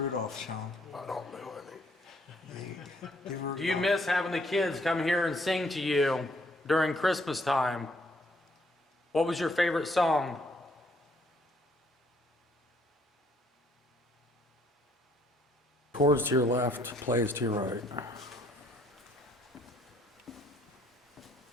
Shaun. I don't know any. Do you miss having the kids come here and sing to you during Christmas time? What was your favorite song? Chords to your left, plays to your right.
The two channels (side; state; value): both; normal; correlation 0.67